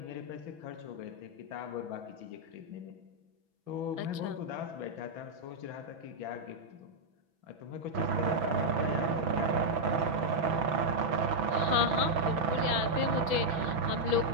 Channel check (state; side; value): late; left; 6.1 ms